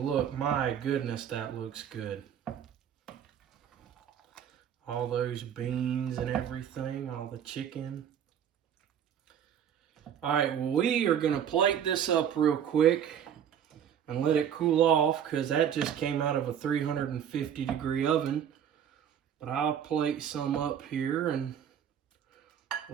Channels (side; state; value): left; quieter; 8.9 dB